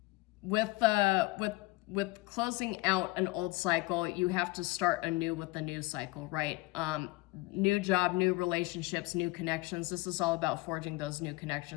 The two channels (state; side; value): quieter; right; 22.5 dB